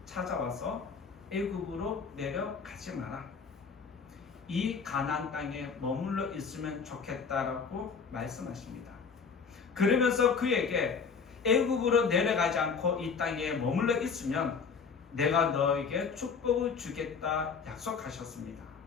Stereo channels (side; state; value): right; quieter; 5.7 dB